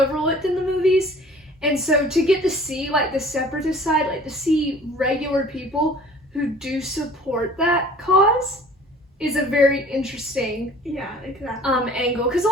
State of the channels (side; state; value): both; normal; correlation 0.49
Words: in the movies. And so to get to see like the Separatist side, like to see regular people who do support that cause is a very interesting Yeah, exactly. angle. Because a